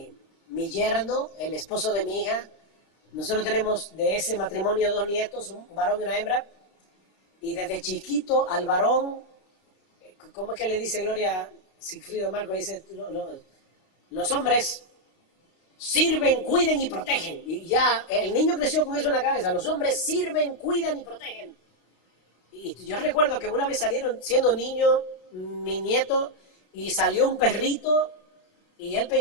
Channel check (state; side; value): late; right; 32 ms